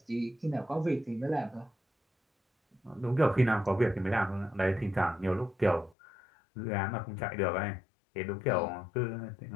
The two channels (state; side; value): drops out; right; at 6.0 s